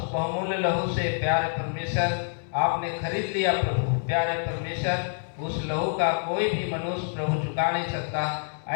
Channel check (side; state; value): right; silent; 59 dB below the other